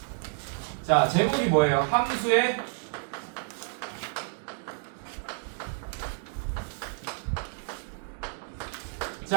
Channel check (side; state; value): left; silent; 58 dB below the other